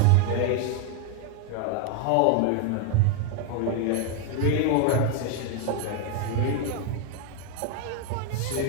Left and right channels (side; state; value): both; different; correlation 0.01